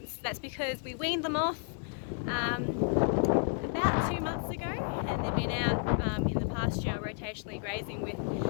That's because we weaned them off about 2 months ago, and they've been out in the pasture rotationally grazing with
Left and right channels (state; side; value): silent; right; 57 dB below the other